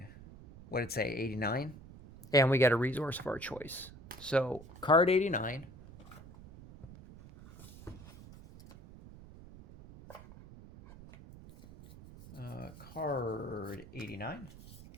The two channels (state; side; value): noise; right; rumble, 18 dB below the sound